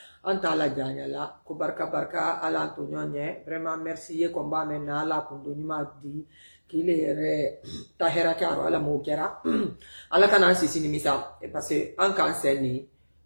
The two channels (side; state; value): both; inverted; correlation -1.00